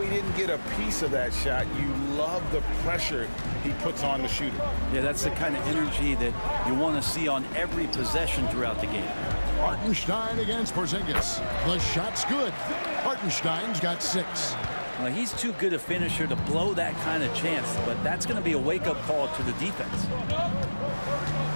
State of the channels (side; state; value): both; inverted; correlation -1.00